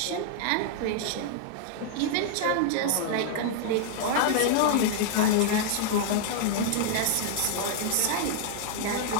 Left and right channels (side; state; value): both; different; correlation -0.01